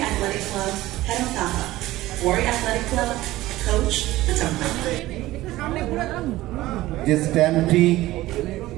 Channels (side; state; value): left; quieter; 16.9 dB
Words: Athletic Club, head of Taha, Wari Athletic Club, coach Patampa. যে স্ট্যাম্পটি